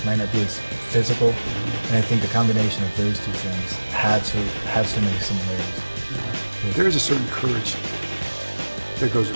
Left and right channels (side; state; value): both; inverted; correlation -1.00